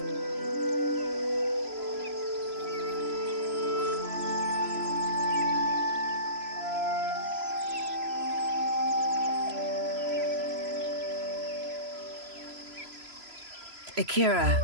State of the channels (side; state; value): left; late; 3.0 ms